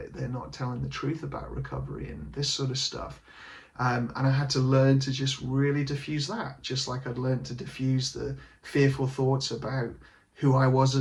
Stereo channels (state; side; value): identical; both; correlation 1.00